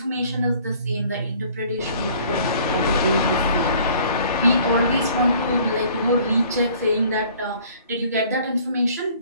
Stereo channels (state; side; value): inverted; both; correlation -0.55